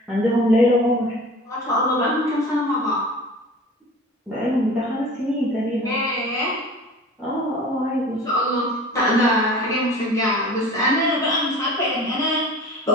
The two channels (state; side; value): normal; both; correlation 0.41